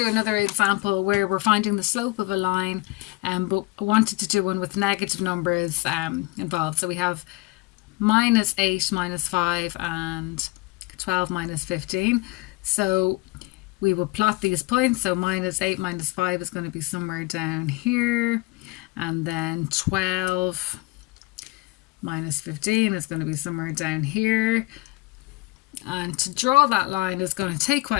another example where we're finding the slope of a line, but I wanted to do one with negative numbers involved. So we have -8 minus 5 and 12 minus 15. So we will plot these points. So -8 minus 5 is going to be somewhere down here. And then 12 minus 15 is going to be somewhere down here. And to draw that line is going to take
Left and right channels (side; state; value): right; quieter; 23.4 dB